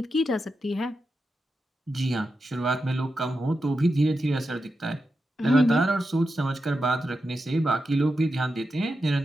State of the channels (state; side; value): normal; both; correlation 0.88